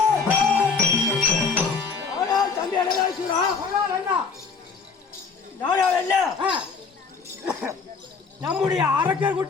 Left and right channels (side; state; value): right; quieter; 5.1 dB